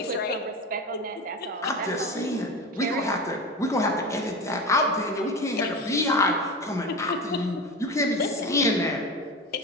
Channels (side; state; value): both; normal; correlation 0.26